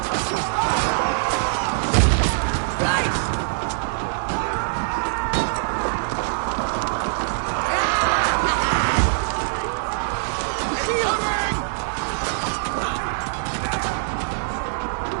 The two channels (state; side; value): silent; left; digital silence